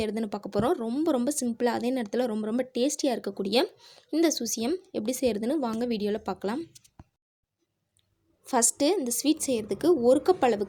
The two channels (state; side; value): identical; both; correlation 1.00